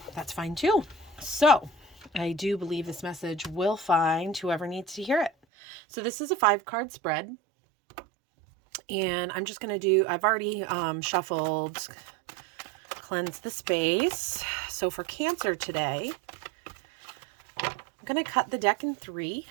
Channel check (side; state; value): left; drops out; at 5.3 s